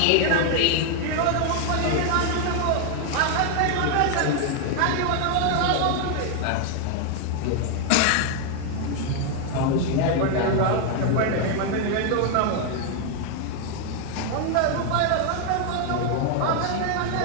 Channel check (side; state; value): both; different; correlation 0.00